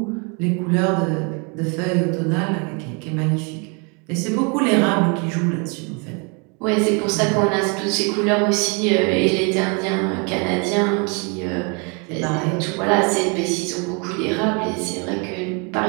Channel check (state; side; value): quieter; left; 34.0 dB